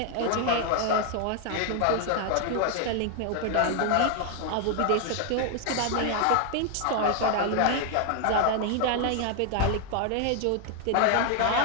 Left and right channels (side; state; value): both; different; correlation 0.00